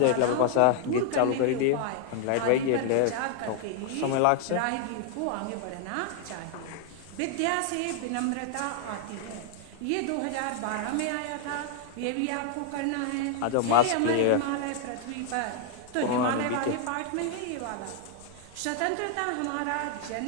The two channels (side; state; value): both; different; correlation 0.00